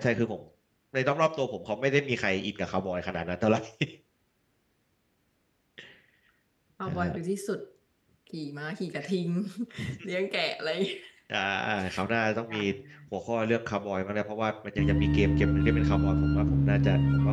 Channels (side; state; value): both; identical; correlation 1.00